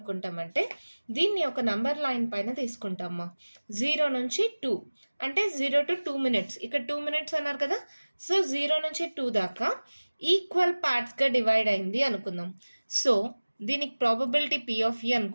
దీన్ని ఒక నంబర్ లైన్ పైన తీసుకుంటామా. 0 నుంచి 2 అంటే 0 to 2 minutes, ఇక్కడ 2 minutes అన్నారు కదా, సో 0 నుంచి 2 దాకా ఈక్వల్ పార్ట్స్గా డివైడ్ అయింది అనుకుందాం. సో దీనికి ప్రాబబిలిటీ P of E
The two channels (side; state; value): both; inverted; correlation -1.00